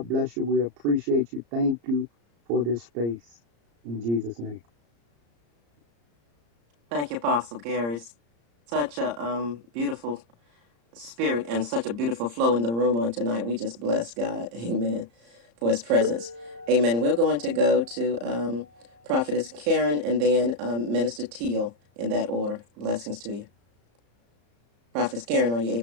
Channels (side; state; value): left; late; 34 ms